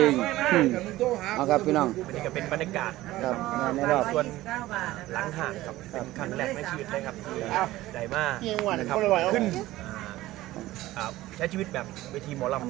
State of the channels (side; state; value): left; quieter; 16.6 dB